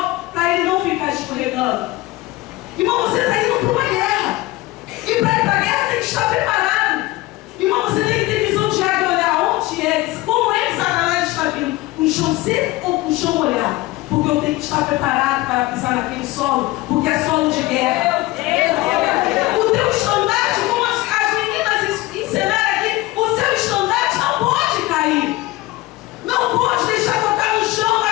para ele não ficar escorregando. Irmão, você está indo para uma guerra. E para ir para a guerra tem que estar preparado. Irmão, você tem que ter visão de águia e olhar onde é, como é que Satanás está vindo. Com chão seco ou com chão molhado? Porque eu tenho que estar preparado para pisar naquele solo, porque é solo de guerra. O teu estandarte, como as meninas ensinaram aqui, o seu estandarte não pode cair. Não pode deixar tocar no chão,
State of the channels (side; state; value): right; quieter; 19.2 dB